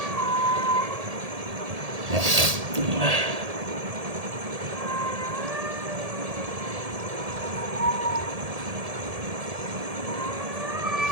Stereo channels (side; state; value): left; late; 1.7 ms